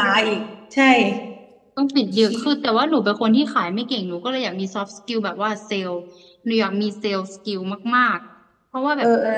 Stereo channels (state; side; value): identical; both; correlation 1.00